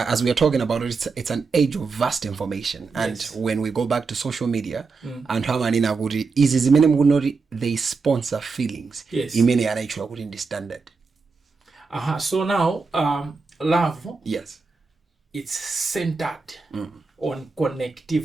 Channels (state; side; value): quieter; left; 4.5 dB